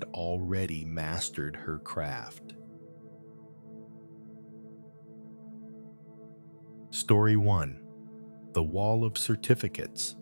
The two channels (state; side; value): inverted; both; correlation -1.00